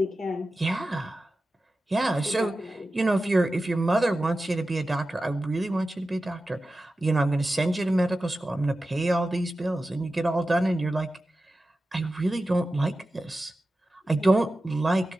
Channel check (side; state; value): both; normal; correlation 0.94